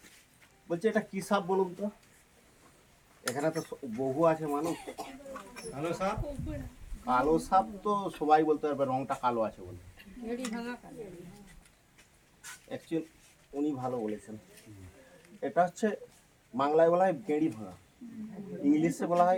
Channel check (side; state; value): both; identical; correlation 1.00